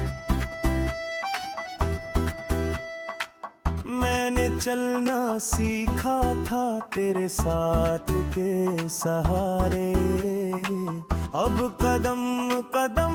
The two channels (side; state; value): both; identical; correlation 1.00